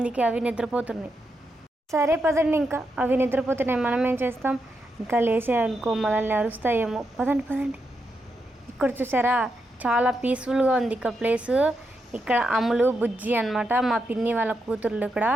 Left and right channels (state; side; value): normal; both; correlation 0.84